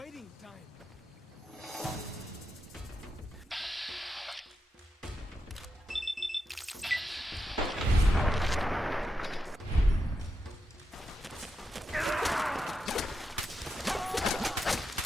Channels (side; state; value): both; normal; correlation 0.87